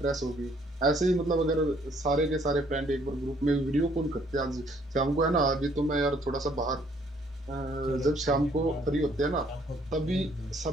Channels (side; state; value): both; normal; correlation 0.64